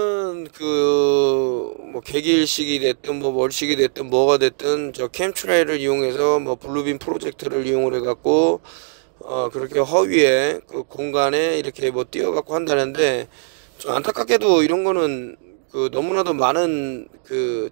뭐 개기일식이 됐든 뭐 월식이 됐든 뭐가 됐든 저 캠트레일을 이용해서 뭐 블루빔 프로젝터를 이용을 해갖고 그렇게 허위에 그 공간에 이렇게 뭐 띄워갖고 한다는데, 좀 안타깝게도 이런 거는 너무나도 많은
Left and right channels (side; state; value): left; silent; digital silence